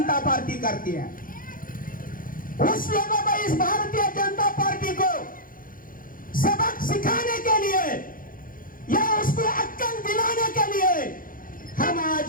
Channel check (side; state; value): right; late; 0.40 ms